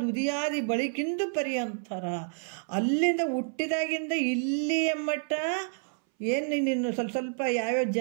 ಉದಿಯಾದಿ ಬಳಿಕಿಂದು ಪರ್ಯಂತರ, ಅಲ್ಲಿಂದ ಹುಟ್ಟಿದಾಗಿಂದ ಇಲ್ಲಿಯ ಮಟ್ಟ ಏನು ನೀನು ಸ್ವಲ್ಪ ಯಾವ್ಯಾವ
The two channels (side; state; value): left; silent; 59 dB below the other